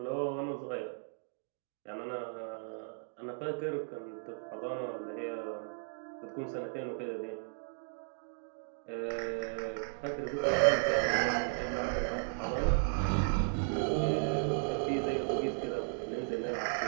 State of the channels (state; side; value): silent; left; digital silence